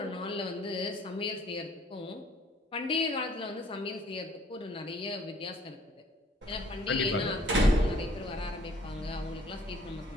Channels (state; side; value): normal; both; correlation 0.59